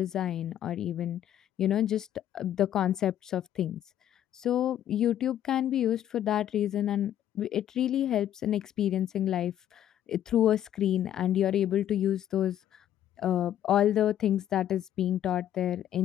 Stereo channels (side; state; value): right; quieter; 11.2 dB